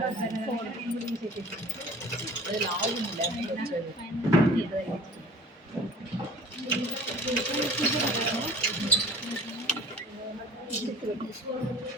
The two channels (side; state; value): both; normal; correlation 0.45